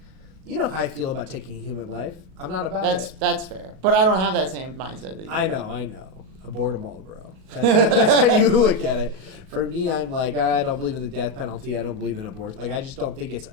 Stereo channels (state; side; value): late; left; 37 ms